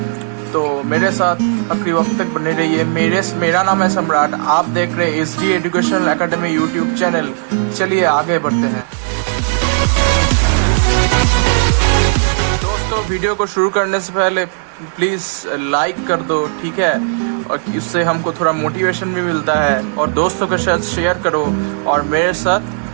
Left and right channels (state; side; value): silent; left; digital silence